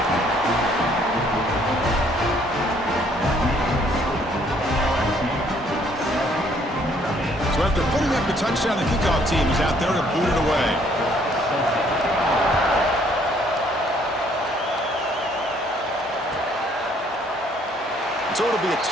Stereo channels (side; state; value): both; normal; correlation 0.64